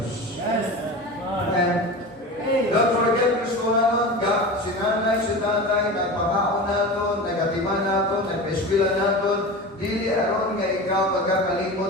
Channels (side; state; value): both; normal; correlation 0.30